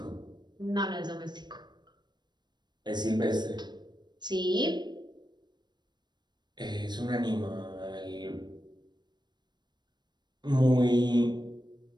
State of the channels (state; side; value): late; left; 0.21 ms